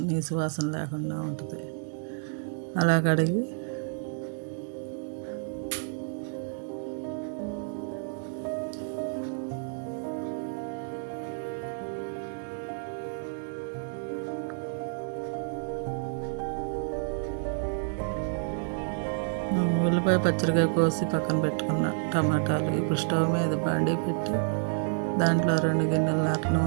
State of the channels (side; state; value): left; silent; digital silence